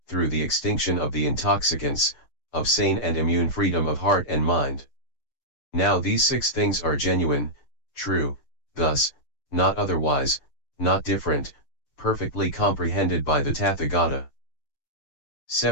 through the extinction of the intoxicants, of sane and immune freedom of heart and mind. Now these 6 things are genuine, true, thus, not otherwise, not different, perfectly comprehended by the Tathagata.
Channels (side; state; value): right; late; 6.6 ms